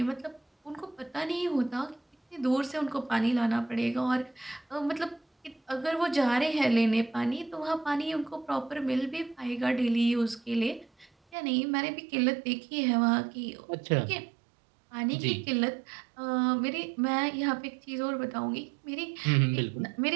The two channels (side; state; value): left; drops out; at 11.4 s